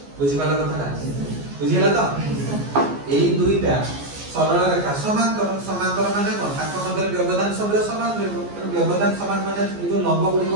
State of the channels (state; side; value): late; left; 14 ms